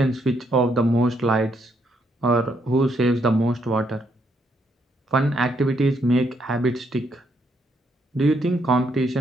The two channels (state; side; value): normal; both; correlation 0.74